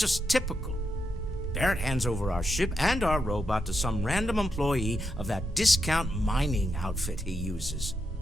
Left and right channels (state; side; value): normal; both; correlation 0.84